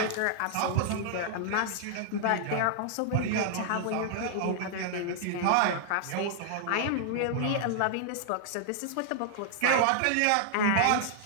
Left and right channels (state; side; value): different; both; correlation -0.01